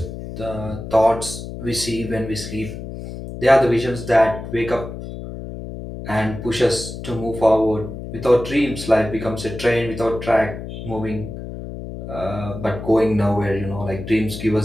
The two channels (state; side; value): noise; left; hum, 9 dB below the sound